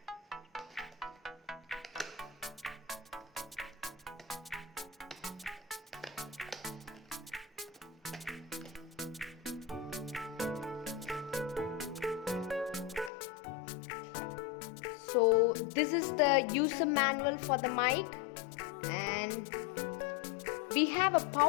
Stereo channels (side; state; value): right; drops out; at 13.1 s